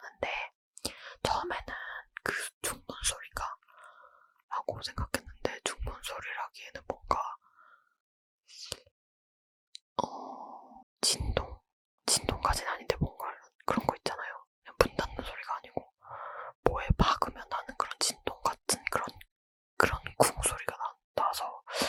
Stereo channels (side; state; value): both; identical; correlation 1.00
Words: 처음에는 그 중문 소리가 라고 생각했는데, 중문 소리라기에는 뭔가 진동까지는 아닌데 뭔가 그런 거 있잖아요. 그냥 문 닫는 소리가 아니고 뭐에 박으면 나는 그런 진동 같은 그런 쿵 소리가 나서